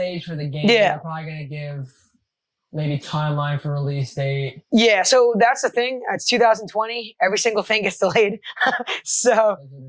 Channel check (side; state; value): both; identical; correlation 1.00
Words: for the game. Yeah. They're probably going to give maybe timeline for release date. Yeah, so that's the thing. It's 2020. Every single thing gets delayed. So